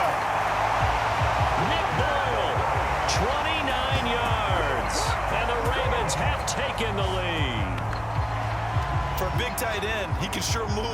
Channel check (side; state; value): both; identical; correlation 1.00